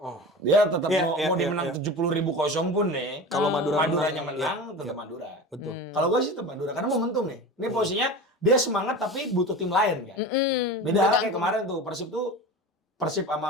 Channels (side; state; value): both; normal; correlation 0.31